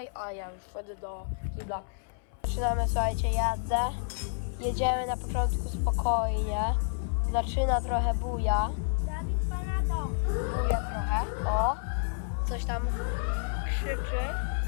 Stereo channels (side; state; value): right; silent; 58 dB below the other